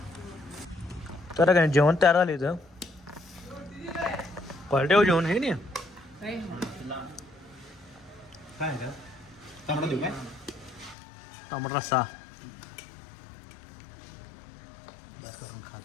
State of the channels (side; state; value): right; drops out; at 11.0 s